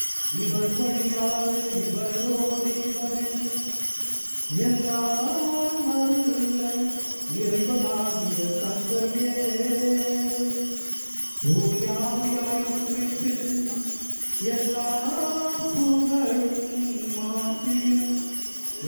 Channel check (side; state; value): both; inverted; correlation -1.00